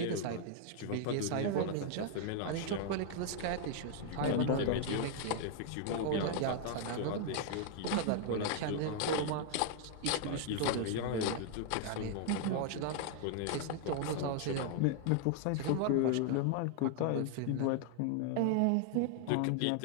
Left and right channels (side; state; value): both; different; correlation 0.00